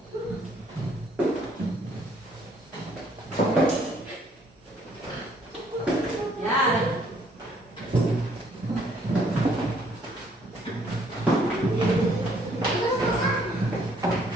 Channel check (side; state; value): both; normal; correlation 0.65